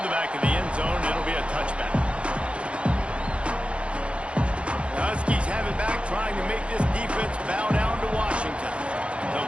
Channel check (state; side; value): late; left; 0.060 ms